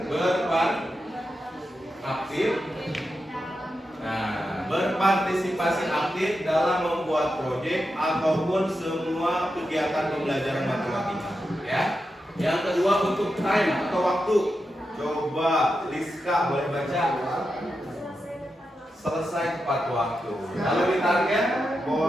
Aktif. Nah, berpartisipasi aktif dalam membuat proyek ataupun semua kegiatan pembelajaran matematika. Ya. Yang kedua untuk time atau waktu. Coba Liska boleh baca. Selesai tepat waktu. Lalu di target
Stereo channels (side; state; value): both; normal; correlation 0.88